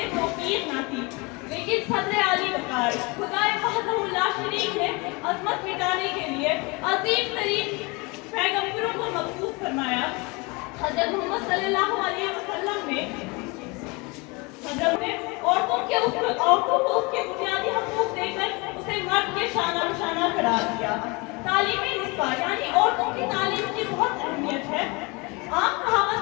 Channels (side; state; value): right; quieter; 27.4 dB